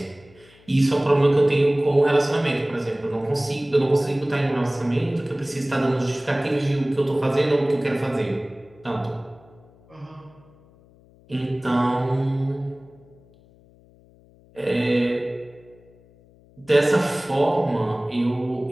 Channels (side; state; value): left; noise; hum, 28 dB below the sound